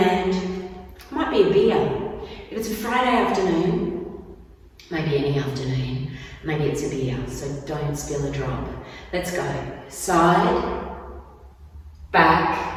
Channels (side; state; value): both; identical; correlation 1.00